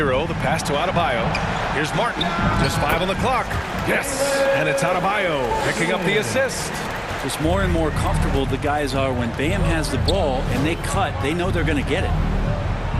the pass to Adebayo. Here's Martin. Just 5 on the clock. Yes, and it's Adebayo picking up the assist. Just more and more comfortable the guys are when Bam has the ball and they cut. They know they're going to get it.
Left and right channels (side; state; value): both; identical; correlation 1.00